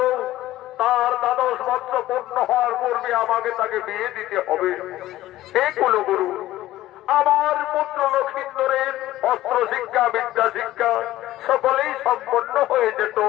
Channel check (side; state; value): right; quieter; 15.2 dB